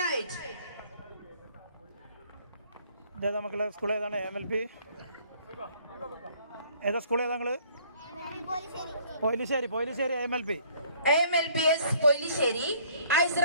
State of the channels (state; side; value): inverted; both; correlation -0.59